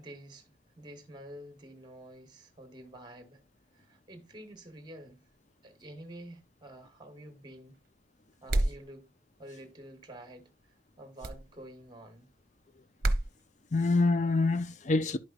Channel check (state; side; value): normal; both; correlation 0.83